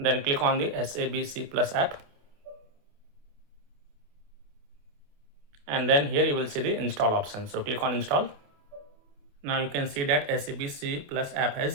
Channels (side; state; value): left; late; 28 ms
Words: click on the SABC Plus app. And then here you will see the install option. So click on install. Now you can see that SABC Plus app